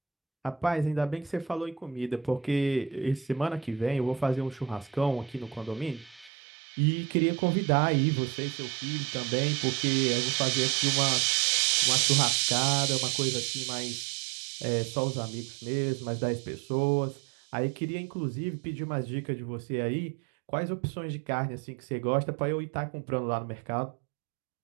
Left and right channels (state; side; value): drops out; left; at 6.3 s